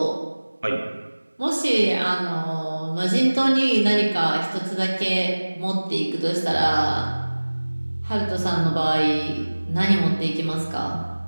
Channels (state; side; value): inverted; both; correlation -1.00